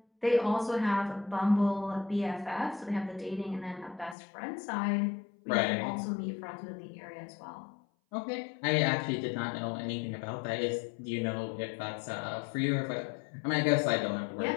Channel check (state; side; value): drops out; right; at 4.2 s